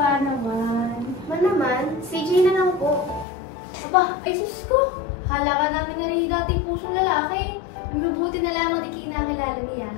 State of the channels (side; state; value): right; drops out; at 3.2 s